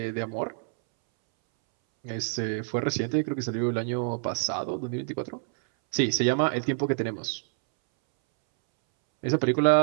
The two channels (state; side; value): silent; left; 60 dB below the other